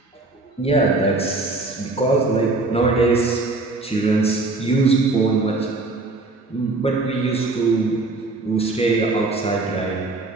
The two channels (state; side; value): quieter; left; 3.3 dB